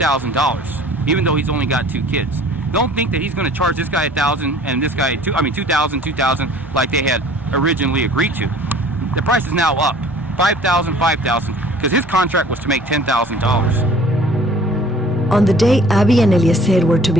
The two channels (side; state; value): both; normal; correlation 0.50